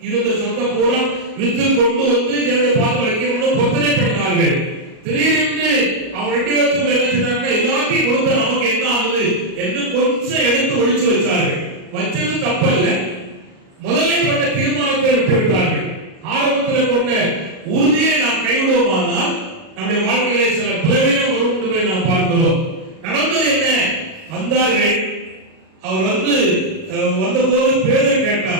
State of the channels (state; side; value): late; left; 37 ms